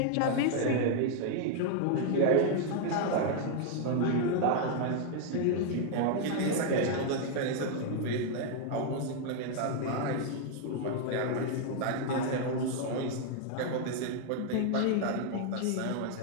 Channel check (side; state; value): both; different; correlation 0.00